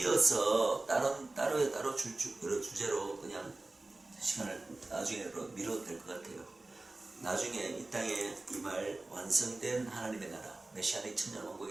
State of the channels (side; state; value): left; quieter; 3.0 dB